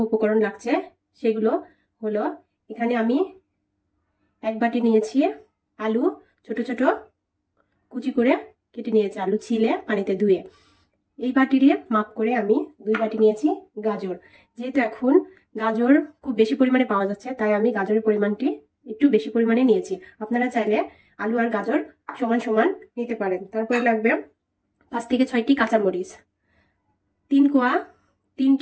উপকরণ লাগছে সেগুলো হলো, এখানে আমি এক বাটি নিয়েছি আলু, ছোট ছোট কুচি করে কেটে নিয়েছি, আলু ছিলে পানিতে ধুয়ে। এই বাটিরে মাপ করে আমি 2 বাটি নিয়েছি গাজর। যেহেতু এখন গাজর খুব বেশি পরিমাণে পাওয়া যাচ্ছে, তাই আমি গাজরের পরিমাণটি একটু বেশি পরিমাণে নিয়েছি। আপনারা চাইলে আলু আর গাজর সমান সমান নিতে পারেন। তারপরে লাগবে 5 থেকে 6টি কাঁচামরিচ,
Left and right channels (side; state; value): both; identical; correlation 1.00